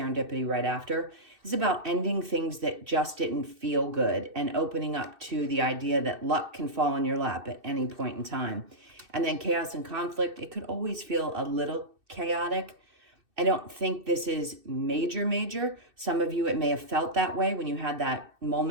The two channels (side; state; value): left; late; 2.6 ms